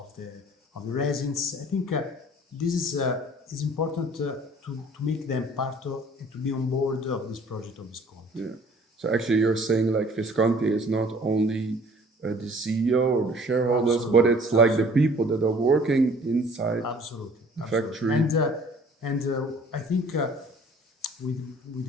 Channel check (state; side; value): normal; both; correlation 0.53